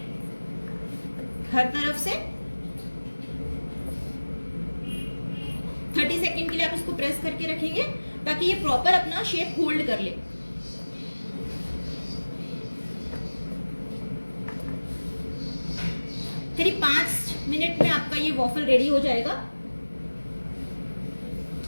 हर तरफ से। 30 सेकंड के लिए आप इसको प्रेस करके रखेंगे ताकि ये प्रॉपर अपना शेप होल्ड कर ले। करीब 5 मिनट में आपका ये वॉफल रेडी हो जाएगा।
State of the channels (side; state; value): both; inverted; correlation -1.00